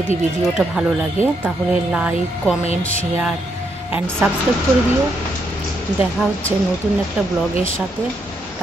ভিডিওটা ভালো লাগে তাহলে like, comment, share and subscribe করে দিও। দেখা হচ্ছে নতুন একটা ব্লগের সাথে।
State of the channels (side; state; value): both; normal; correlation 0.77